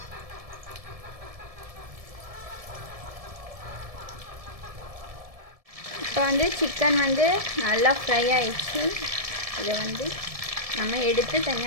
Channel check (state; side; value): late; left; 1.7 ms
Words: இப்போ வந்து சிக்கன் வந்து நல்லா ஃப்ரை ஆயிடுச்சு. இதை வந்து நம்ம எடுத்து